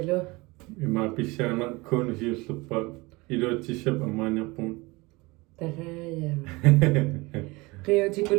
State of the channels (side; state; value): left; quieter; 23.7 dB